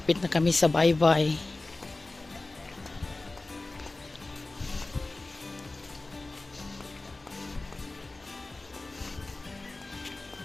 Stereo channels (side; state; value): right; quieter; 3.1 dB